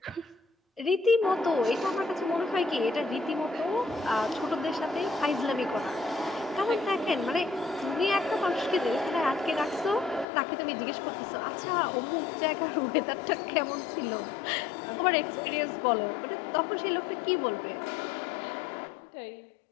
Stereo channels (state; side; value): drops out; right; at 10.2 s